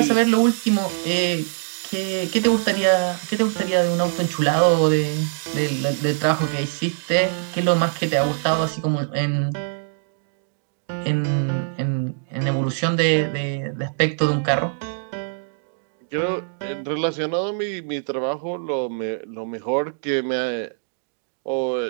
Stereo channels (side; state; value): left; silent; digital silence